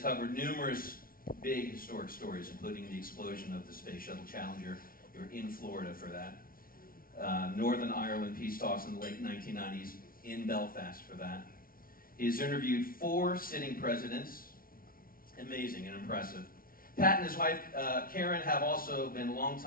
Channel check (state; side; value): late; right; 0.42 ms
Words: covered numerous big historic stories, including the explosion of the Space Shuttle Challenger. You were in Florida for that. Northern Ireland peace talks in the late 1990s, in Belfast for that. He has interviewed 4 sitting presidents. Amazing and impressive. Pat and his wife, Karen, have also been